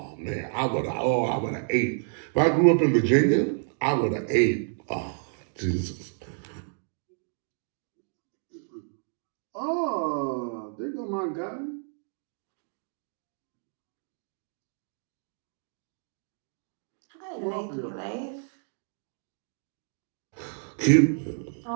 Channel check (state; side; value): silent; left; 58 dB below the other